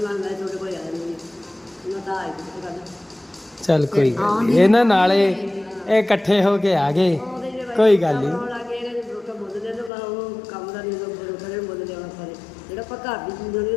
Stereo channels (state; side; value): drops out; right; at 9.9 s